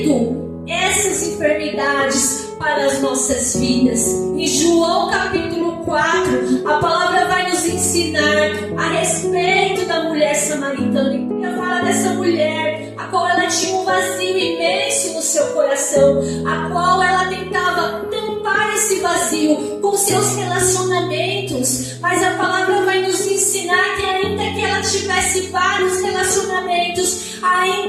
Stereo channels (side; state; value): both; identical; correlation 1.00